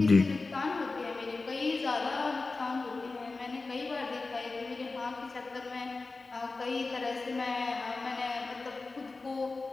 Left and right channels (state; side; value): quieter; right; 3.7 dB